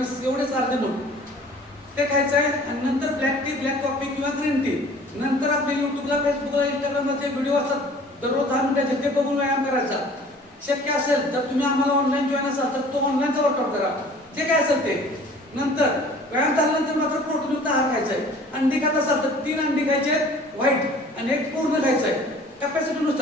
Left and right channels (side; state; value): both; normal; correlation 0.49